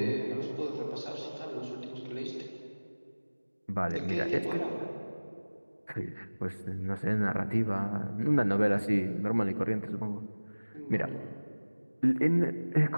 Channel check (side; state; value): both; inverted; correlation -1.00